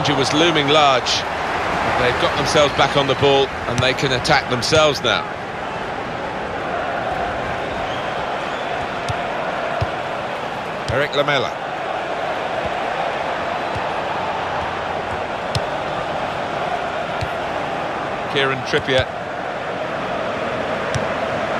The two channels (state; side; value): identical; both; correlation 1.00